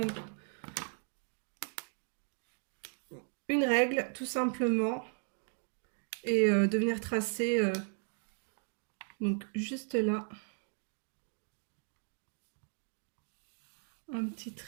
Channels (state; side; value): silent; left; 53 dB below the other